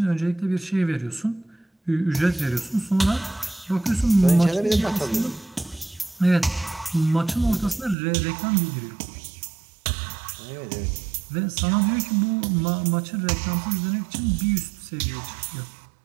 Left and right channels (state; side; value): drops out; left; at 8.0 s